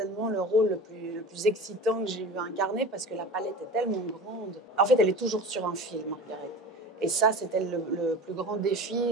le rôle le plus excitant que j'ai eu à incarner parce que la palette est tellement grande. En fait, elle est toujours sur un fil, Margaret. Et ça, c'était le plus grand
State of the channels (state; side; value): normal; both; correlation 0.34